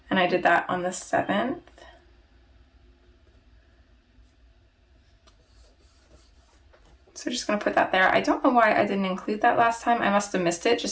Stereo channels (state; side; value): identical; both; correlation 1.00